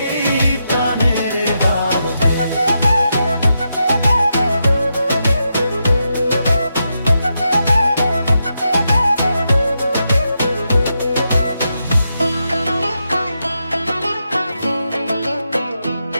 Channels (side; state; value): both; inverted; correlation -0.85